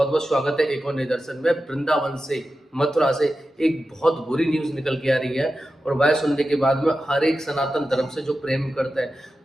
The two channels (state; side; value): normal; both; correlation 0.92